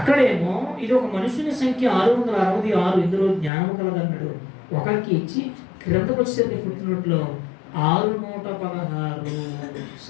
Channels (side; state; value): right; drops out; at 3.5 s